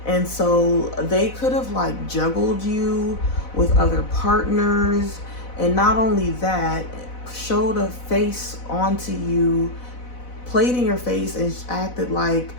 And so they could have like juggled you with other partners, and not only that, showed a face onto you, played in your face, and acted like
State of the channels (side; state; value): right; late; 4.0 ms